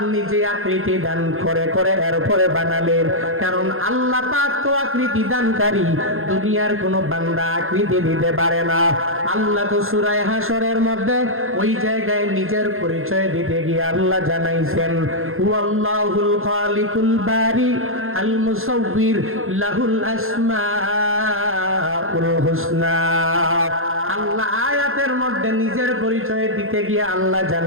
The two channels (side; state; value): left; late; 0.61 ms